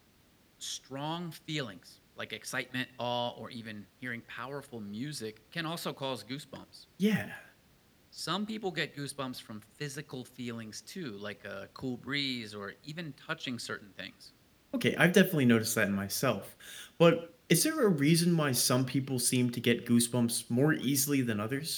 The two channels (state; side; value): identical; both; correlation 1.00